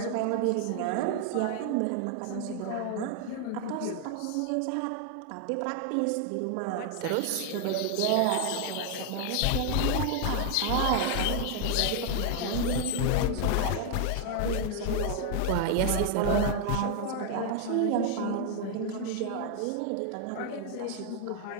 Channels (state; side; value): different; both; correlation 0.00